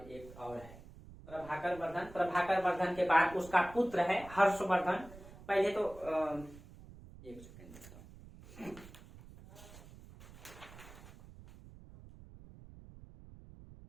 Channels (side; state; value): right; noise; rumble, 18 dB below the sound